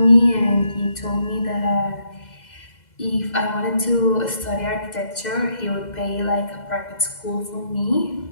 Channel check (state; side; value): late; right; 2.0 ms